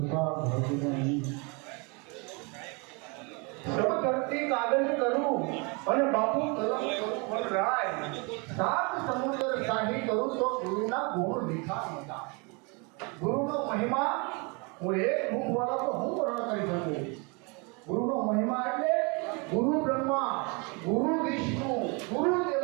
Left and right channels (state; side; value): quieter; left; 31.2 dB